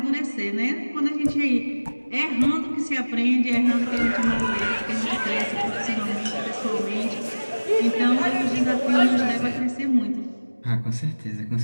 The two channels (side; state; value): both; inverted; correlation -1.00